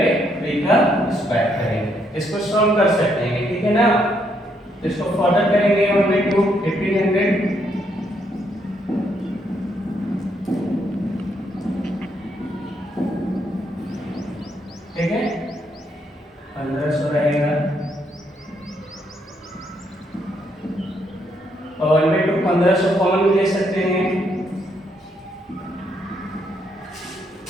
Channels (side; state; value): both; normal; correlation 0.74